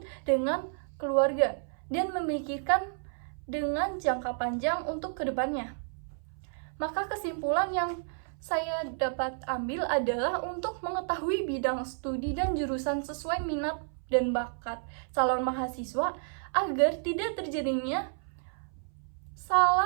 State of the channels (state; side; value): silent; left; 57 dB below the other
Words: dengan keluarga dan memikirkan dengan jangka panjang untuk kedepannya. Maka kesimpulan yang saya dapat ambil adalah untuk mengetahui bidang studi dan jurusan sesuai minat dan bakat calon mahasiswa agar tidak terjadinya